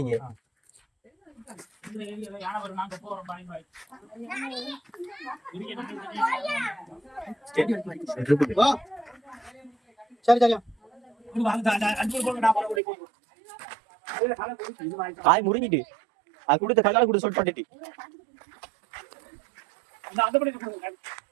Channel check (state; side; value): drops out; left; at 12.8 s